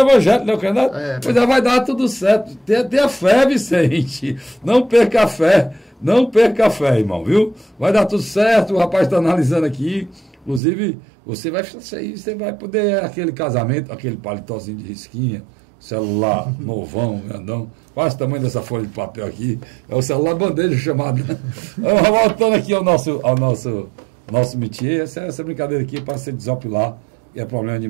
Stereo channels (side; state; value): left; drops out; at 10.6 s